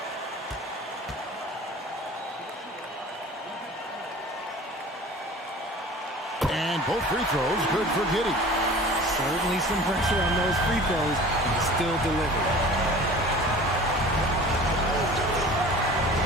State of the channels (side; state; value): both; normal; correlation 0.42